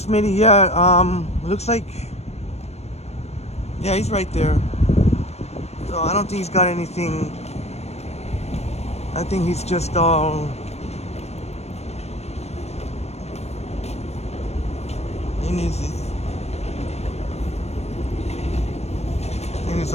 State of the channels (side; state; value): right; late; 0.31 ms